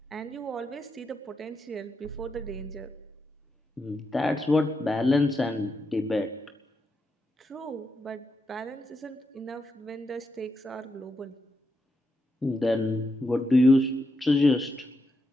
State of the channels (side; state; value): both; normal; correlation 0.84